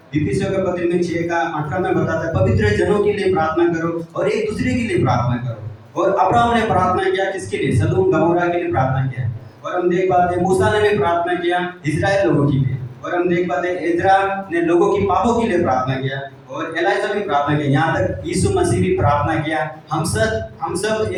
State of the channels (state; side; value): identical; both; correlation 1.00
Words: इफिसियों का पत्री में 6:18 में बताता है पवित्र जनों के लिए प्रार्थना करो और एक दूसरे के लिए प्रार्थना करो। और अब्राहम ने प्रार्थना किया किसके लिए? सदोम गमोरा के लिए प्रार्थना किया। और हम देख पाते हैं मूसा ने भी प्रार्थना किया इजराइल लोगों के लिए। और हम देख पाते हैं एजरा ने लोगों की पापों के लिए प्रार्थना किया, और एलाइजा भी प्रार्थना किया। यहाँ तक यीशु मसीह भी प्रार्थना किया हम सब